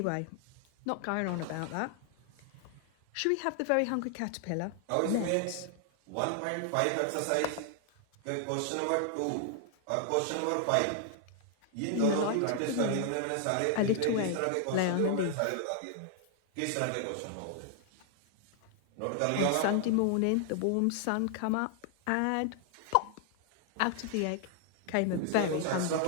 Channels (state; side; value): different; both; correlation 0.00